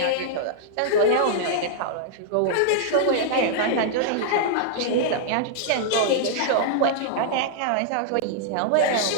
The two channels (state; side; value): different; both; correlation -0.01